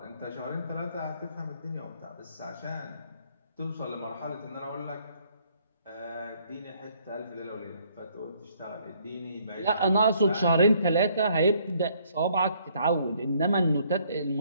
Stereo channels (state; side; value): inverted; both; correlation -0.65